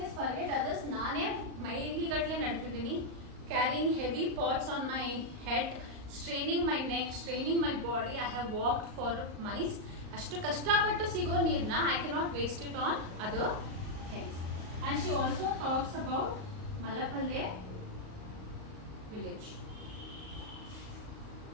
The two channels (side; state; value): left; late; 38 ms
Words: forget others, ನಾನೇ ಮೈಲಿಗಟ್ಟಲೆ ನಡೆತಿದ್ದೀನಿ, carrying heavy pots on my head, straining my neck, straining my body. I have walked for miles. ಅಷ್ಟು ಕಷ್ಟಪಟ್ಟು ಸಿಗೋ ನೀರನ್ನ I cannot waste it on other things. And she also talks about Malapalle village.